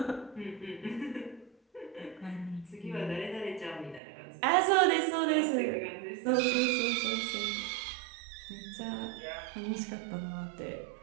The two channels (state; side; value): drops out; left; at 4.0 s